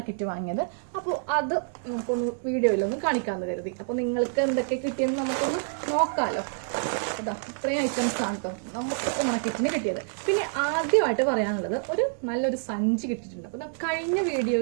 വാങ്ങിയത്. അപ്പോൾ അത് നമുക്കൊന്ന് വീഡിയോയിലൊന്ന് കാണിക്കാമെന്ന് കരുതി. അപ്പോൾ നിങ്ങൾക്ക് എന്തൊക്കെ കിട്ടിയെന്ന് നമുക്കൊന്ന് നോക്കാമല്ലോ. അതാ ഇത്രയും ഐറ്റംസ് ആണ് കേട്ടോ നമുക്ക് ഓണക്കിറ്റിന് കിട്ടിയത്. പിന്നെ ആദ്യമായിട്ട് പറയാനുള്ളത് നല്ലൊരു സഞ്ചി കിട്ടിയിട്ടുണ്ട്. അപ്പോൾ കഴിഞ്ഞ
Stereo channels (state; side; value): silent; left; digital silence